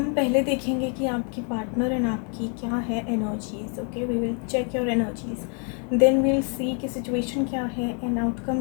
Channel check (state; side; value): quieter; right; 39.5 dB